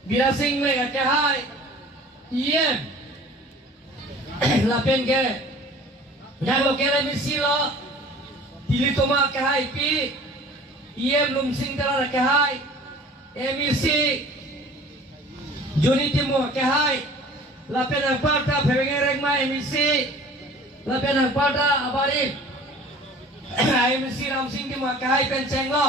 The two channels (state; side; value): normal; both; correlation 0.46